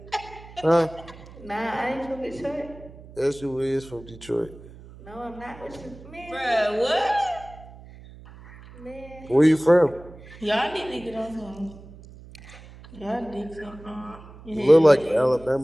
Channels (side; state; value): right; noise; hum, 19 dB below the sound